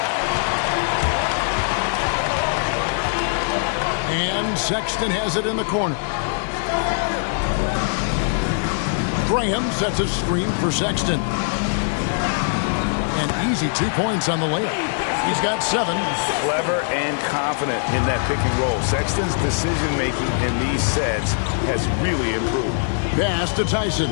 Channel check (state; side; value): silent; right; digital silence